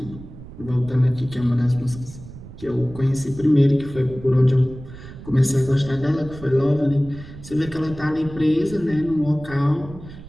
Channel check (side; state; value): right; noise; rumble, 15 dB below the sound